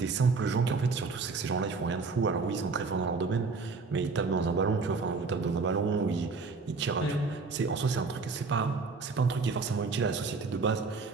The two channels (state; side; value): quieter; left; 4.3 dB